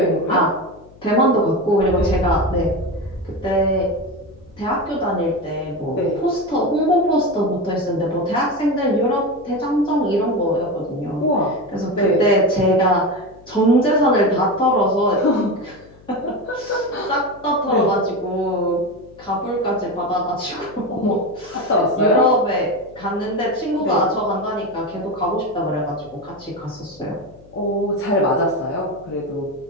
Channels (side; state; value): left; noise; hum, 24 dB below the sound